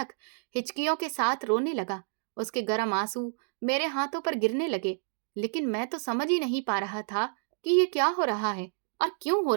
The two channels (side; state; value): left; silent; digital silence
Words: हिचकियों के साथ रोने लगा। उसके गर्म आंसू मेरे हाथों पर गिरने लगे, लेकिन मैं तो समझ ही नहीं पा रहा था कि ये क्या हो रहा है और क्यों हो